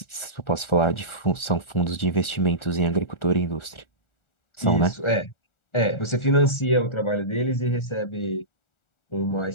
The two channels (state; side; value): late; right; 1.4 ms